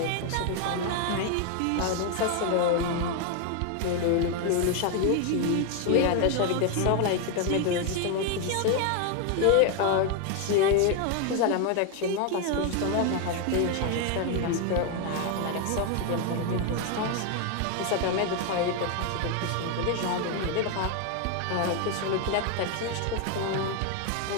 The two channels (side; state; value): both; different; correlation 0.01